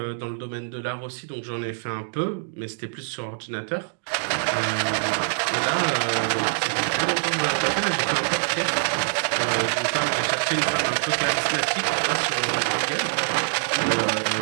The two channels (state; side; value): silent; left; digital silence